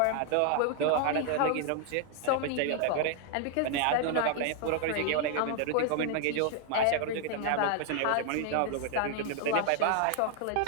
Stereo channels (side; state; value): both; different; correlation 0.00